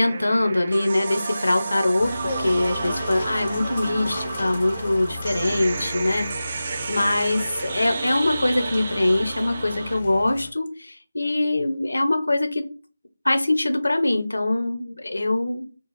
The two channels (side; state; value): both; inverted; correlation -0.96